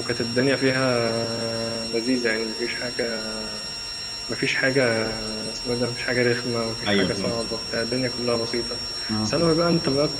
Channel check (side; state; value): both; identical; correlation 1.00